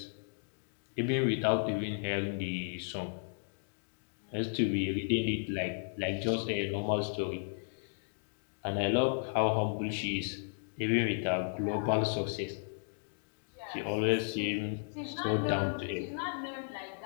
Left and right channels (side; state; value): right; silent; digital silence